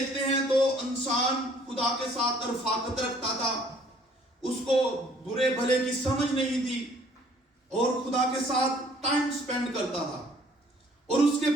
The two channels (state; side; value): normal; both; correlation 0.58